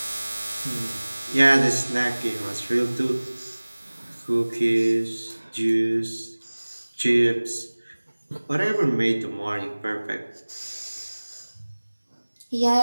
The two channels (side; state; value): both; inverted; correlation -1.00